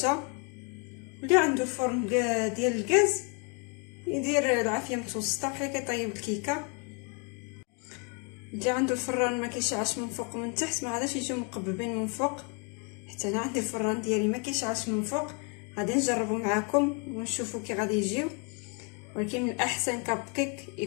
واللي عنده فرن ديال الغاز يدير العافيه متوسطه بحال كيطيب الكيكه. اللي عنده الفران ما كيشعلش من فوق ومن تحت ما غاديش يجيو مقببين من فوق. حتى انا عندي الفران ديالي ما كيشعلش من فوق. غادي نجربوا معكم ونشوفوا كي غادي يجيو. ولكن من الاحسن كاب كيك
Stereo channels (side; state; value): right; quieter; 35.8 dB